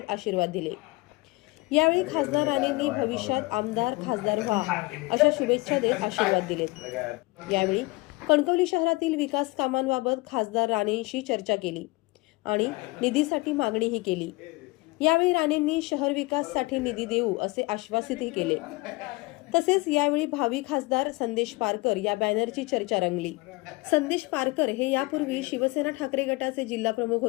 आशीर्वाद दिले। यावेळी खासदार राणेंनी भविष्यात आमदार खासदार व्हा अशा शुभेच्छा देत आशीर्वाद दिलेत। यावेळी कणकवली शहरातील विकास कामांबाबत खासदार राणेंशी चर्चा केली आणि निधीसाठी मागणीही केली। यावेळी राणेंनी शहर विकासासाठी निधी देऊ असे आश्वासितही केले। तसेच यावेळी भावी खासदार संदेश पारकर या बॅनरची चर्चा रंगली। संदेश पारकर हे यापूर्वी शिवसेना ठाकरे गटाचे जिल्हा प्रमुख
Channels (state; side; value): quieter; right; 23.5 dB